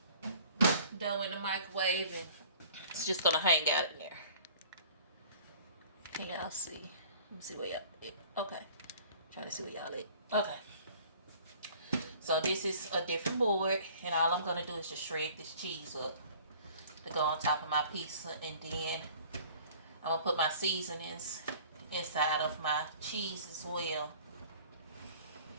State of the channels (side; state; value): both; inverted; correlation -0.50